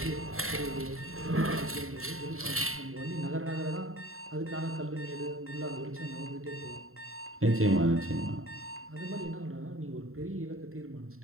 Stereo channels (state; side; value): late; left; 0.62 ms